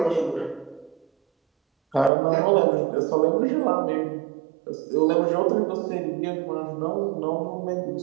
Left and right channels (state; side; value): drops out; left; at 2.1 s